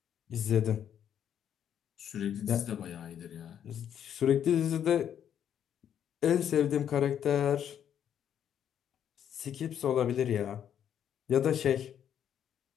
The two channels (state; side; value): quieter; right; 9.3 dB